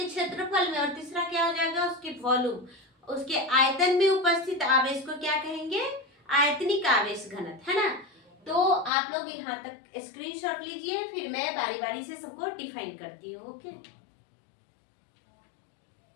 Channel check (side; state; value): right; drops out; at 8.9 s